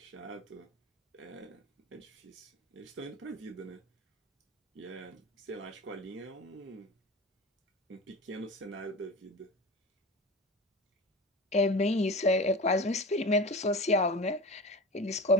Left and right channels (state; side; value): normal; both; correlation 0.31